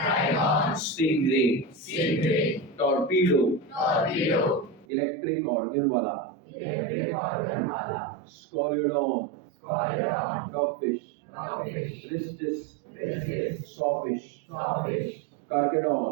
Stingray. Stingray. Torpedo. Torpedo. Electric organ wala. Electric organ wala. Scoliodon. Scoliodon. Dogfish. Dogfish. Rhistis. Rhistis. Sawfish. Sawfish.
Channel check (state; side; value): drops out; left; at 4.9 s